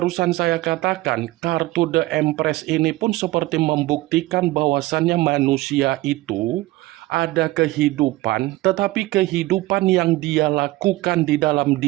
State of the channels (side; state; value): left; quieter; 18.5 dB